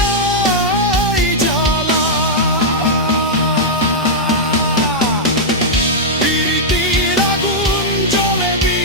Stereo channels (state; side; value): normal; both; correlation -0.05